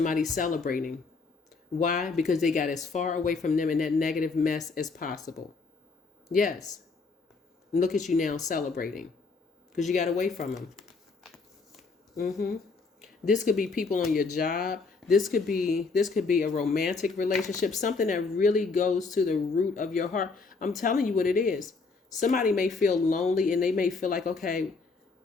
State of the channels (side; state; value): right; quieter; 4.2 dB